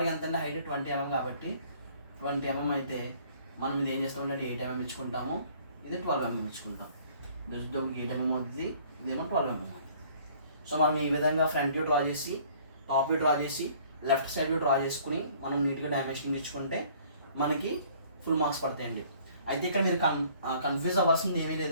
ఎంత అంటే హైట్ 20 mm కాబట్టి 20 mm అయితే మనం ఇది ఏం చేస్తామంటే 8 mm ఇచ్చుకుంటాము, ఇది 12 mm ఇచ్చుకుంటాం. ఇది వచ్చేటప్పటికి 8 mm అవుతుంది, ఇదేమో 12 mm అవుతుంది. సో మనం ఈ విధంగా ఫ్రంట్ వ్యూ డ్రా చేసి, టాప్ వ్యూ డ్రా చేసి, లెఫ్ట్ సైడ్ వ్యూ డ్రా చేసుకుని మనం నీట్గా డైమెన్షన్ ఇచ్చుకుంటే మనకి ఫుల్ మార్క్స్ పడతాయండి. అయితే ఇక్కడ మీరు కన్ఫ్యూజ్ అవ్వాల్సింది ఏమీ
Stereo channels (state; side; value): inverted; both; correlation -0.57